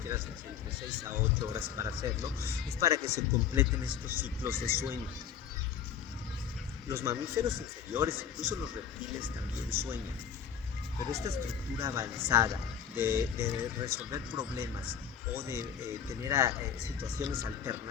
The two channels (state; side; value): quieter; right; 8.2 dB